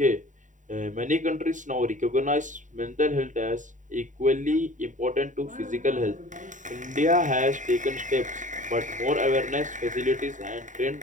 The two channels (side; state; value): left; late; 0.36 ms